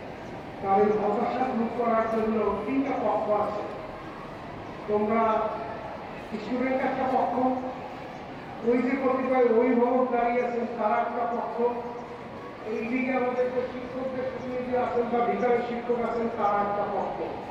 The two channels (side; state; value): both; identical; correlation 1.00